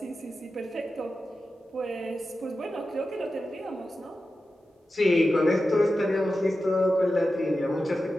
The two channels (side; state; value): both; normal; correlation 0.92